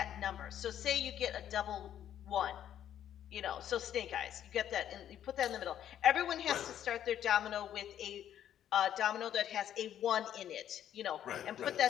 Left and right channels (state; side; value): quieter; right; 10.6 dB